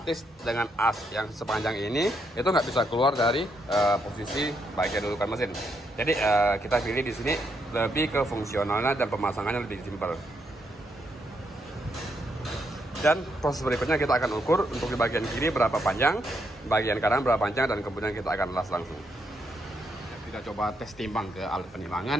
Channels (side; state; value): both; normal; correlation 0.78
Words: dengan as yang sepanjang ini itu nggak bisa keluar dari posisi bagian dudukan mesin. Jadi kita pilih di sini lebih ke fungsionalnya dan pemasangannya lebih simpel. Dan proses berikutnya kita akan ukur untuk di bagian kiri berapa panjang, bagian kanan berapa panjang, dan kemudian kita akan las langsung. kita coba tes timbang ke alat